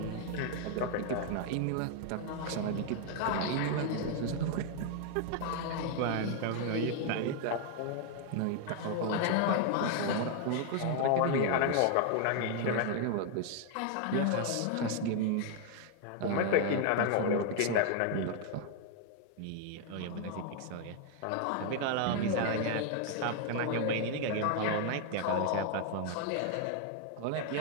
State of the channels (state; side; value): different; both; correlation 0.00